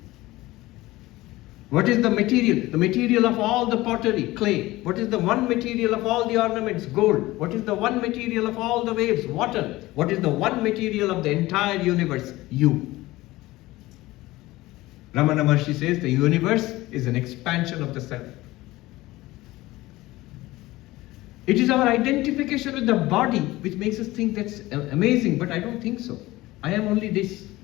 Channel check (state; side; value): quieter; right; 18.5 dB